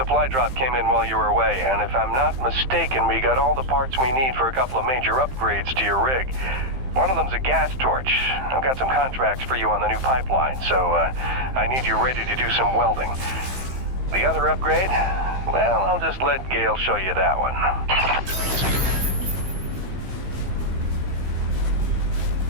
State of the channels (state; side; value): late; left; 15 ms